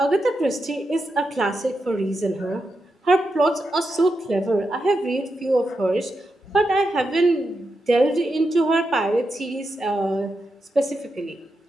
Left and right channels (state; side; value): normal; both; correlation 0.86